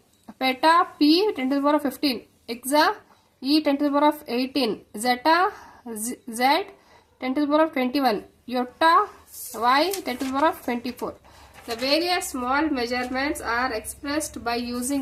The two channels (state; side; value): identical; both; correlation 1.00